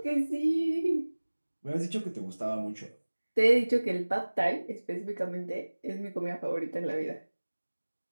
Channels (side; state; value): both; inverted; correlation -1.00